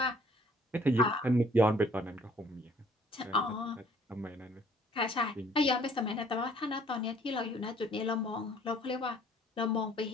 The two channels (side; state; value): both; normal; correlation 0.58